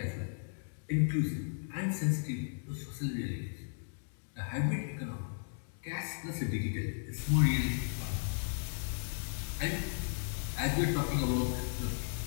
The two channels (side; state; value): right; silent; digital silence